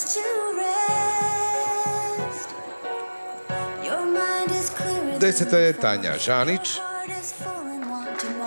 Deseta je Tanja Žanić.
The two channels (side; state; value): both; inverted; correlation -1.00